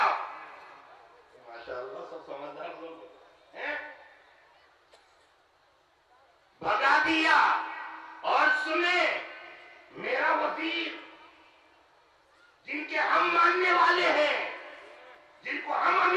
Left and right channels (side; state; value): both; identical; correlation 1.00